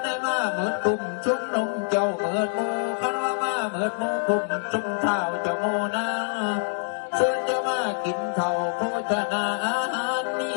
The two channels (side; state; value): right; silent; digital silence